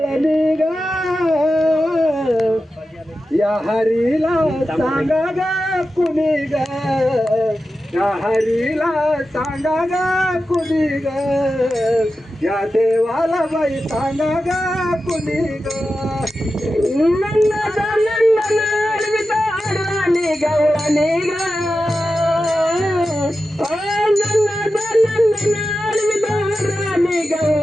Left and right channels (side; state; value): both; normal; correlation 0.92